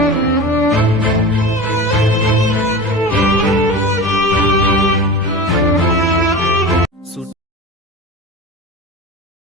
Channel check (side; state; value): both; normal; correlation 0.31